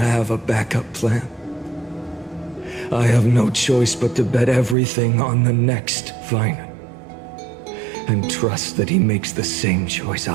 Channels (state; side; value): drops out; left; at 4.8 s